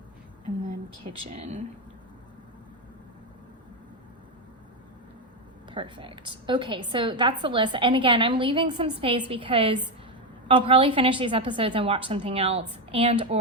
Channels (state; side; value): normal; both; correlation 0.09